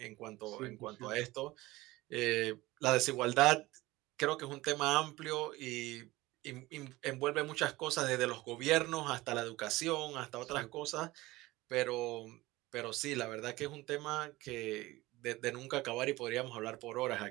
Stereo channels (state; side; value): quieter; left; 19.4 dB